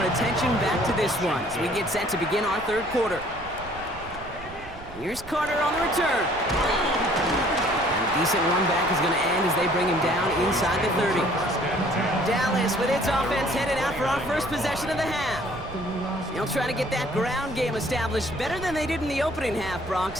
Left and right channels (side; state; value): right; noise; rumble, 16 dB below the sound